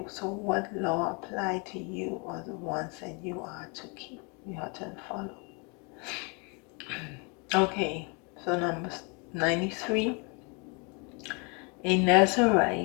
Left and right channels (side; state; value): right; quieter; 32.9 dB